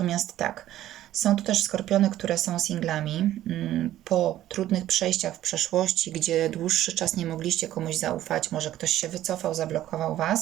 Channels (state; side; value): quieter; left; 13.3 dB